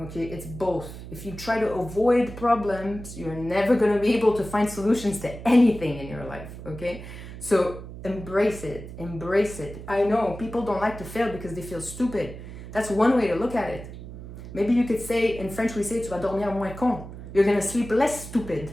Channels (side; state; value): right; noise; hum, 12 dB below the sound